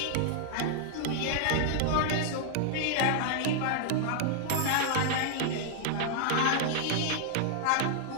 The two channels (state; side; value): different; both; correlation -0.01